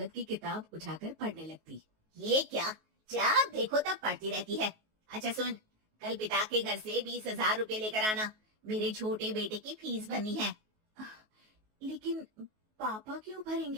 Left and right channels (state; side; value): late; left; 19 ms